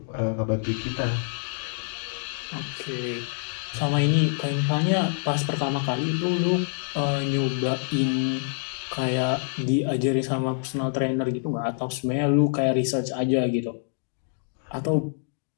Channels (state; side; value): silent; right; digital silence